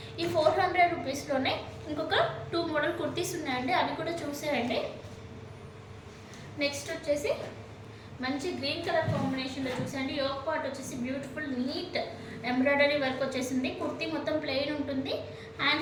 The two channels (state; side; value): identical; both; correlation 1.00